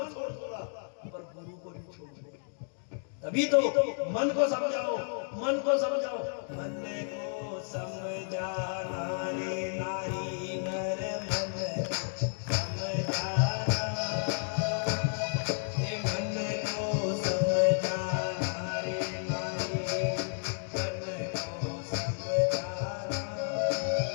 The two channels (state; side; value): silent; right; digital silence